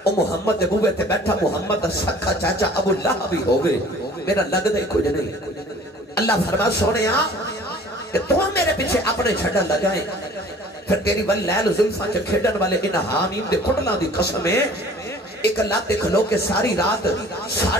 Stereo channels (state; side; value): normal; both; correlation 0.49